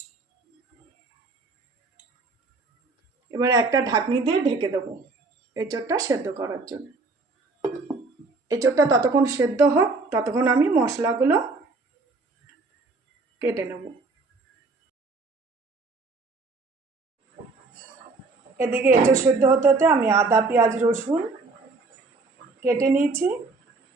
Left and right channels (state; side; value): quieter; left; 3.7 dB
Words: এবার একটা ঢাকনি দিয়ে ঢেকে দেবো এঁচোড়টা সেদ্ধ করার জন্য। এঁচোড়টা ততক্ষণ সেদ্ধ হোক, ততক্ষণ আমি মশলাগুলো কেটে নেব। এদিকে এঁচোড় সেদ্ধ হতে হতে আমি আদা পেঁয়াজ রসুন কেটে নিয়েছি,